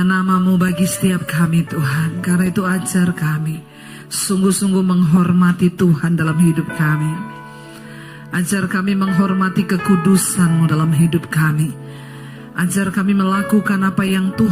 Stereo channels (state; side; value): identical; both; correlation 1.00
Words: namamu bagi setiap kami Tuhan. Karena itu ajar kami sungguh-sungguh menghormati Tuhan dalam hidup kami. Ajar kami menghormati kekudusan-Mu dalam hidup kami. Ajar kami melakukan apa yang